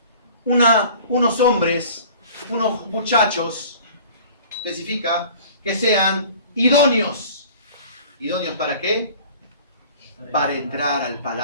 Unos hombres, unos muchachos, especifica, que sean idóneos. ¿Idóneos para qué? Para entrar al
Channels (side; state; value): both; inverted; correlation -0.46